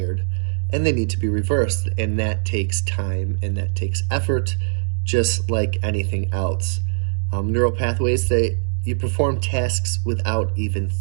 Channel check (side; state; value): left; silent; digital silence